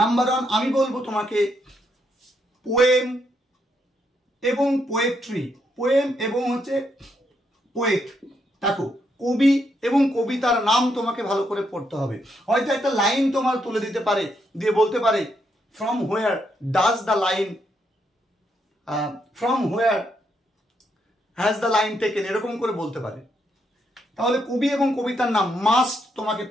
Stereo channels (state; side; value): normal; both; correlation 0.77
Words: 1 আমি বলবো তোমাকে পোয়েম এবং পোয়েট্রি, পোয়েম এবং হচ্ছে পোয়েট। দেখো, কবি এবং কবিতার নাম তোমাকে ভালো করে পড়তে হবে। হয়তো একটা লাইন তোমার তুলে দিতে পারে, দিয়ে বলতে পারে from where does the line, from where has the line taken, এরকম করে বলতে পারে। তাহলে কবি এবং কবিতার নাম মাস্ট তোমাকে